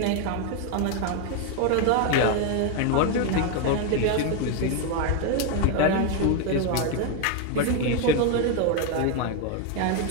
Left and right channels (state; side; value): different; both; correlation 0.01